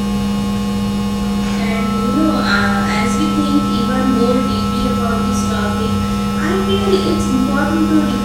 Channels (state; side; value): identical; both; correlation 1.00